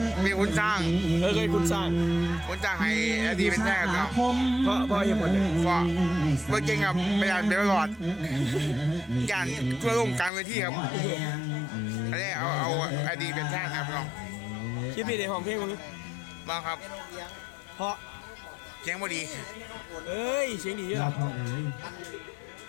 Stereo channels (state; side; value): drops out; right; at 10.3 s